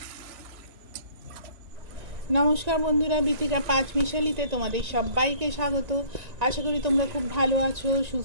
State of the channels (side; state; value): left; late; 1.9 ms